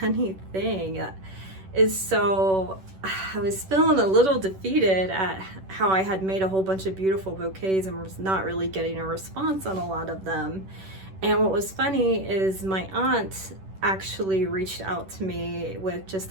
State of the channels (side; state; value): left; late; 10 ms